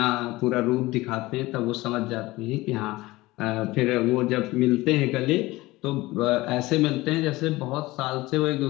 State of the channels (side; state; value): right; quieter; 19.6 dB